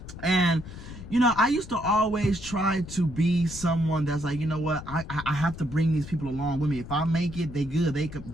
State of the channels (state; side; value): noise; left; rumble, 13 dB below the sound